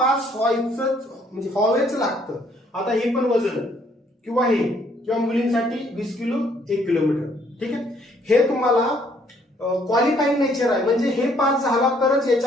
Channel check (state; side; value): normal; both; correlation 0.65